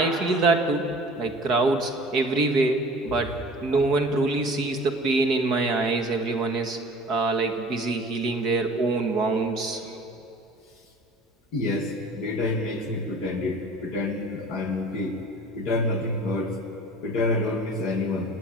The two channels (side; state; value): both; normal; correlation 0.45